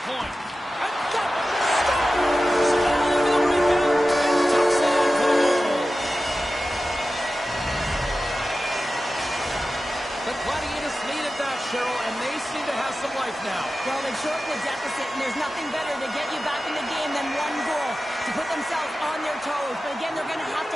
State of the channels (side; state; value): both; normal; correlation 0.94